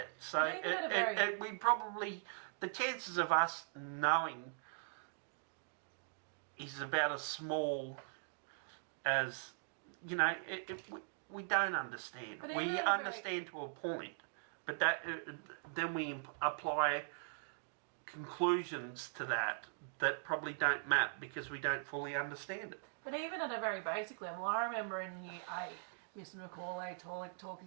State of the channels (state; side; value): silent; left; digital silence